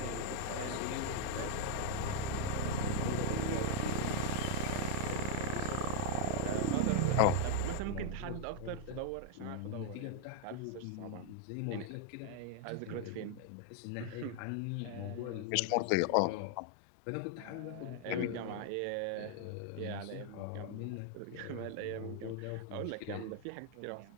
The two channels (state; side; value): different; both; correlation 0.00